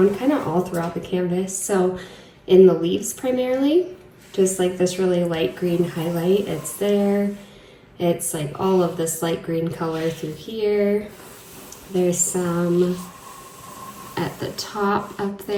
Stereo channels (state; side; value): identical; both; correlation 1.00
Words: kind of all throughout the canvas. So in the leaves primarily, just like this really light green highlight, it's there. It's like all of this light green color through here. There's some at the top up